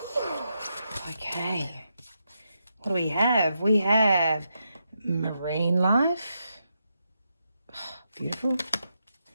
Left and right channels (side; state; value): both; inverted; correlation -0.84